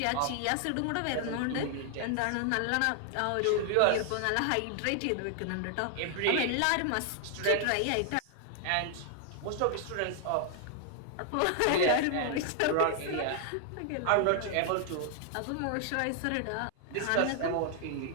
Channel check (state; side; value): different; both; correlation 0.00